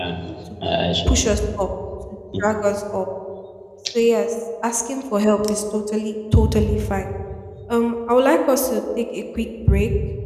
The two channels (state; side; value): identical; both; correlation 1.00